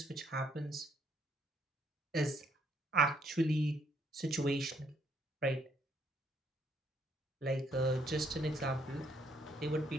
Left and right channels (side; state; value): both; normal; correlation 0.69